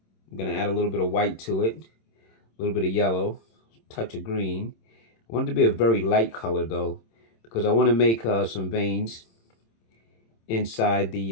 I'm going to add a little bit of white to it, a little bit of yellow, touch of green. I want it to be a very light color though, because I want to make some veins inside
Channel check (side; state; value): right; late; 26 ms